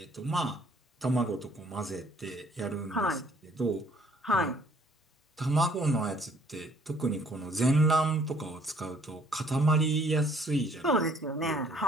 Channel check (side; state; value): both; normal; correlation 0.61